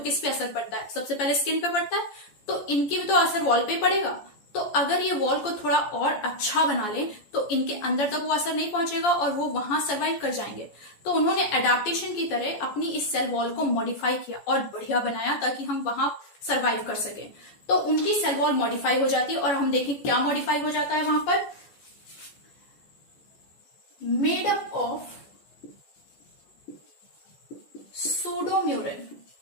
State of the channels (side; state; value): right; late; 14 ms